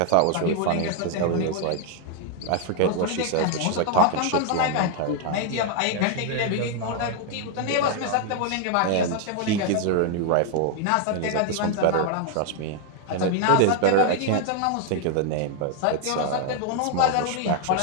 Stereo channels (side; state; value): both; different; correlation 0.00